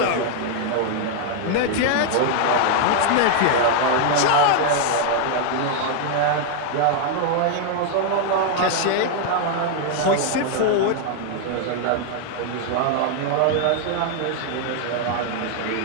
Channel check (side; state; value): both; different; correlation 0.00